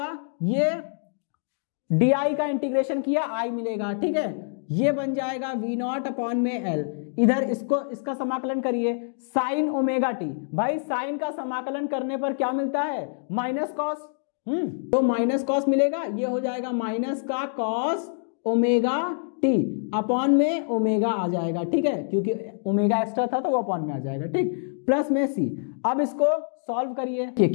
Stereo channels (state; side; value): silent; right; digital silence